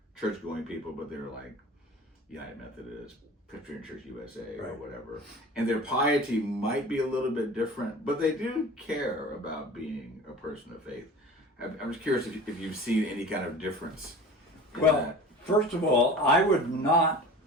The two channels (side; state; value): both; normal; correlation 0.39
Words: church-going people, but they're like United Methodist, Presbyterian Church USA, or whatever. And their piety might be a little bit different, but they do care about being a person of faith. I'm just curious if you've seen any kind of difference. Well, first of all, I would not